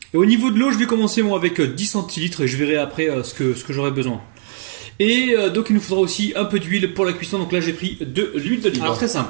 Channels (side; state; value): left; silent; digital silence